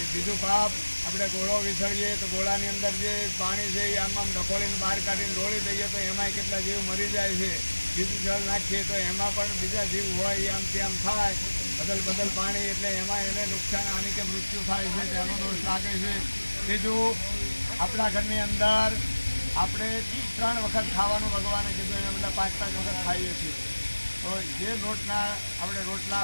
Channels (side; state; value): both; inverted; correlation -1.00